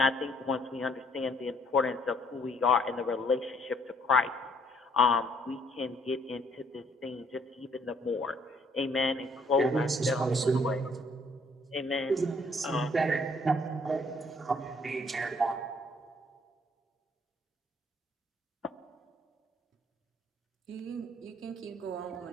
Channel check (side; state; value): both; normal; correlation 0.64